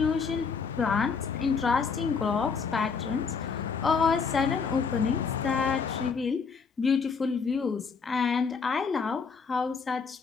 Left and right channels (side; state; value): right; quieter; 5.5 dB